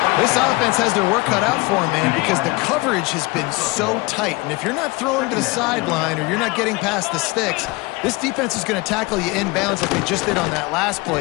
This offense has their work cut out for them, man, because the coverage has been so tight. And if you're not throwing to the sideline or you're not getting past the sticks, this defense is going to tackle you inbounds like they just did on that last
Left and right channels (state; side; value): quieter; right; 24.2 dB